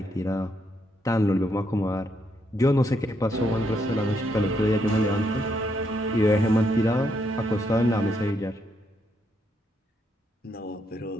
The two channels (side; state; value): both; normal; correlation 0.76